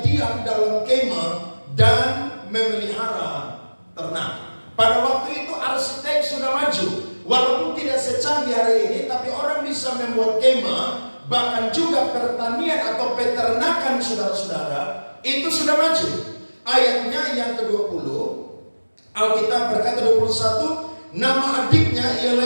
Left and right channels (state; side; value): inverted; both; correlation -1.00